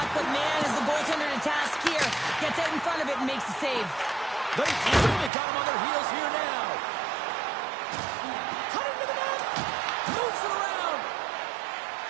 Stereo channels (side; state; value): left; drops out; at 5.3 s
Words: but man, is the goaltender to task here. Gets out in front of it and makes the save. They really got him on their heels here now. Cutting to the net. Moves it around.